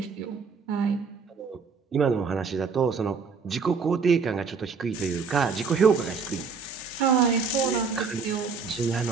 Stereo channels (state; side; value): quieter; left; 5.3 dB